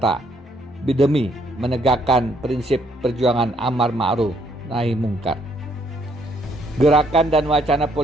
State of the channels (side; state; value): both; normal; correlation 0.69